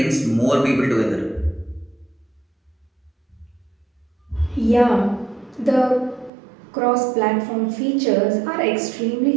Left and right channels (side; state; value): left; drops out; at 6.3 s